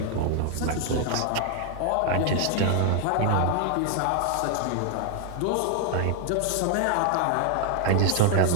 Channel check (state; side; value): different; both; correlation 0.00